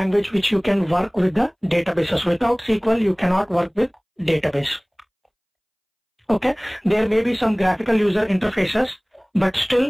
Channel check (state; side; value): identical; both; correlation 1.00